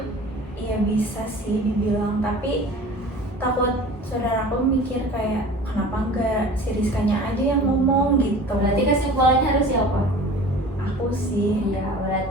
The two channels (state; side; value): normal; both; correlation 0.41